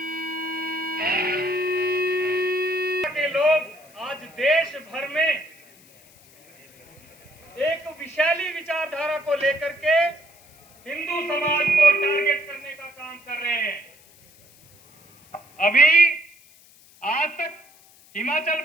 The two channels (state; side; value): noise; left; hiss, 27 dB below the sound